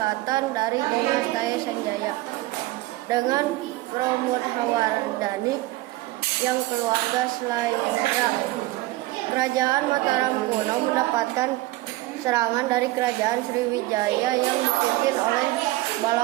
dari dinasti Sanjaya dengan Pramodawardhani yang keluarga Sailendra. Kerajaan Mataram kuno mendapatkan serangan dari kerajaan Sriwijaya yang dipimpin oleh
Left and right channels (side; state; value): left; quieter; 18.5 dB